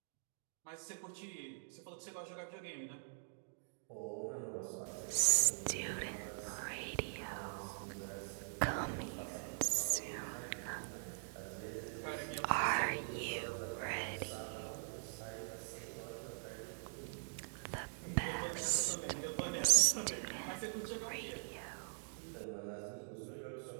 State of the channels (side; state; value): left; silent; digital silence